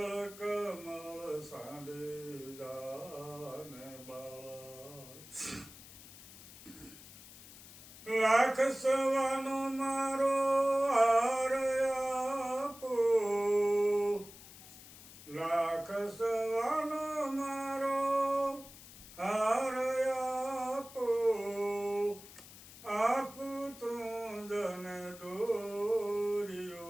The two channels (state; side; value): noise; left; hiss, 17 dB below the sound